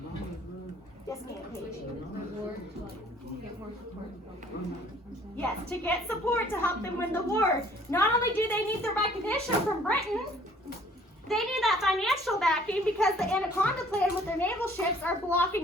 Yes, ma'am, Paige. Yes, to get support to help them win the war. Not only do they need the recognition from Britain, they need that financial backing because the Anaconda Plan with their naval ships are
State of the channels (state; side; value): normal; both; correlation 0.57